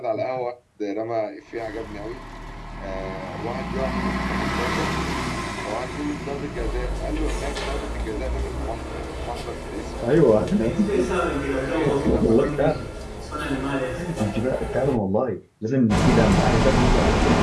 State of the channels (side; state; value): both; identical; correlation 1.00